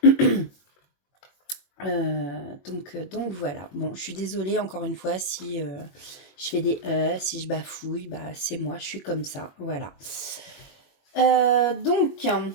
Donc voilà. Bon, je suis désolée encore une fois si je fais des si je bafouille, bah c'est moi, je suis comme ça. Voilà. Donc,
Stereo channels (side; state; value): right; late; 21 ms